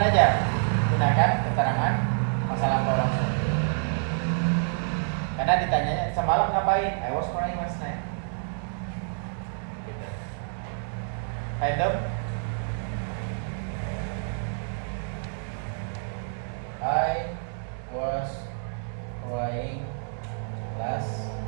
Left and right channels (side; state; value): left; silent; 59 dB below the other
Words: aja, gunakan keterangan masa lampau langsung. Karena ditanyanya semalam ngapain? I was crying last night. Gitu. Item. I was crying last